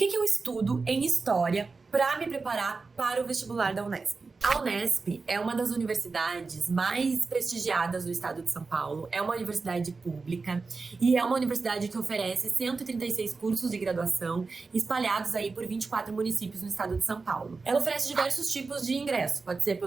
que eu estudo em História para me preparar para o vestibular da Unesp? A Unesp é uma das universidades mais prestigiadas do estado de São Paulo, é uma universidade pública e é uma universidade que oferece 136 cursos de graduação espalhados aí por 24 municípios no estado de São Paulo. Ela oferece diversos tipos de ingresso, pode ser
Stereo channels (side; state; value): left; quieter; 4.2 dB